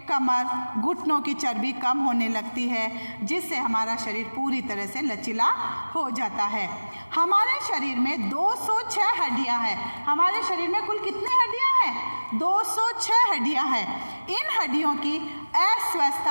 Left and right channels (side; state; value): both; inverted; correlation -1.00